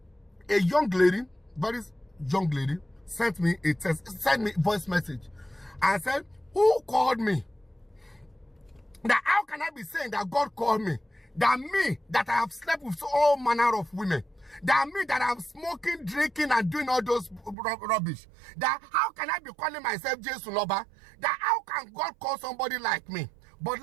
a young lady, very young lady, sent me a voice message. I said, who called me? Now, how can I be saying that God called me? That me, that I have slept with all manner of women. That me, that I'm smoking, drinking, and doing all those rubbish. That how can I be calling myself Jesu Loba? That how can God call somebody like me? But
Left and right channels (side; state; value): left; drops out; at 17.6 s